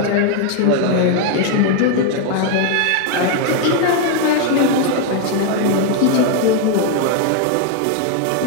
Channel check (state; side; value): different; both; correlation 0.01